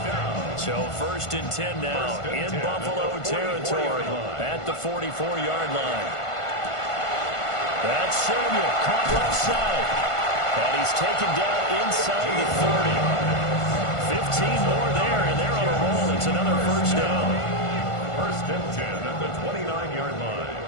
So 1st and 10 now in Buffalo territory at the 44-yard line. That's Samuel, caught left side. And he's taken down inside the 30. 15 more there, and they're on a roll. It's another 1st down. 1st and 10 at the 29-yard line.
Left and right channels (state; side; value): late; right; 1.5 ms